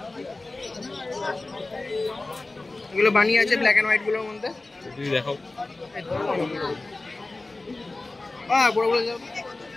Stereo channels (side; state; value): right; quieter; 3.1 dB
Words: এগুলো বানিয়ে আছে ব্ল্যাক এন্ড হোয়াইট গুলোর মধ্যে। যদি দেখাও। হ্যাঁ বড় বড় যাও।